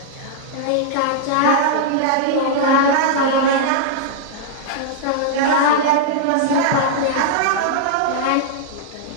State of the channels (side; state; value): both; different; correlation -0.01